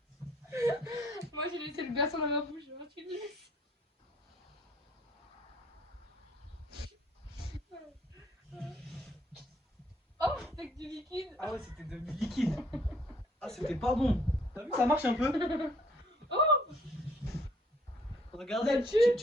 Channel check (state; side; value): normal; both; correlation 0.62